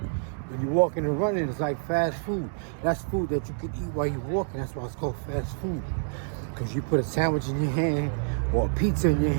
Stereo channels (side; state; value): left; silent; 60 dB below the other